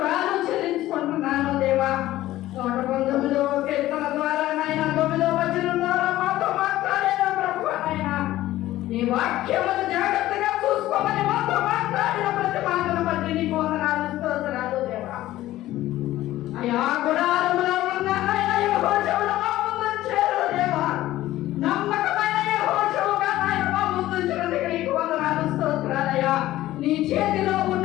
చెల్లించుకుంటున్నాను దేవా. 119వ కీర్తన ద్వారా నాయన 9వ వచనం ద్వారా మాతో మాట్లాడిన ప్రభువా నాయన నీ వాక్యమును జాగ్రత్తగా చూసుకోమని మాతో మాట్లాడిన ప్రతి మాటను బట్టి నీకు వందనాలు స్తోత్రాలు దేవా. అయ్యా గుడారములో ఉన్న నాయన యెహోషువను మా ముందు చేరు దేవా. నమ్మకమైన యెహోషువగా నాయన మా ముందు చేరుటకు నీకు వందనాలు స్తోత్రాలయ్యా. నీ చేతిలో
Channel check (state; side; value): quieter; right; 15.3 dB